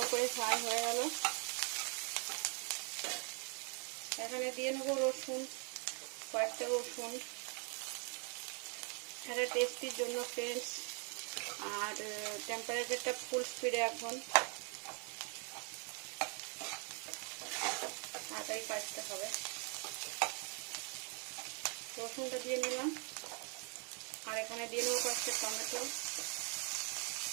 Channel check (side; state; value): left; quieter; 37.6 dB